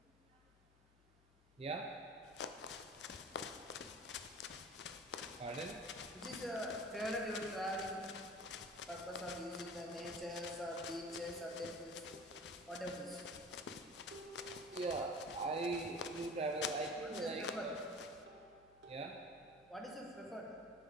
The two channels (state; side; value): noise; left; hum, 28 dB below the sound